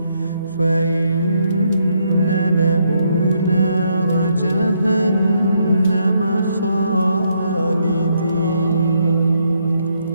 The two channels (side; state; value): both; inverted; correlation -0.74